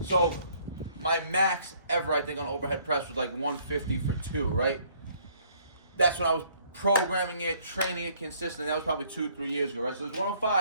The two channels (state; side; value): inverted; both; correlation -0.62